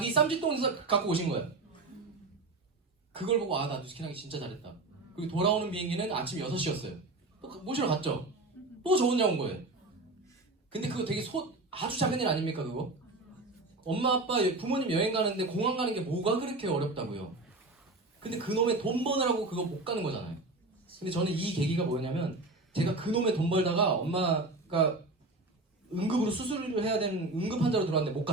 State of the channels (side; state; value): left; quieter; 3.1 dB